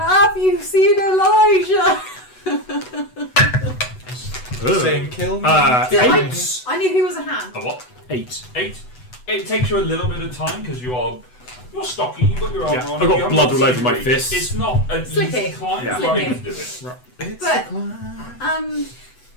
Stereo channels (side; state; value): right; late; 8.0 ms